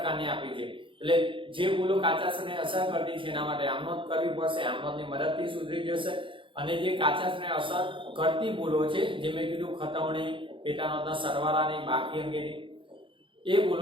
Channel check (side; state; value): left; late; 0.25 ms